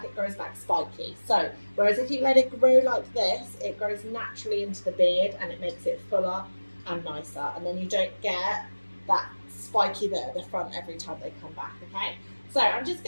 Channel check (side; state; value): both; inverted; correlation -1.00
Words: spiky. So whereas if you let it grow like this, it grows naturally into the beard and it makes it fuller and nicer, and then you don't get that spiky bit at the front every time they come back. Okay, so I'm just